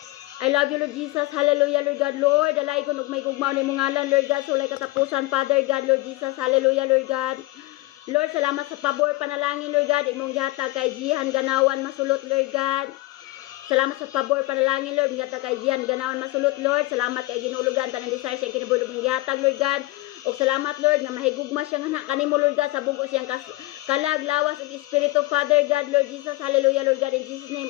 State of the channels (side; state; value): right; quieter; 19.8 dB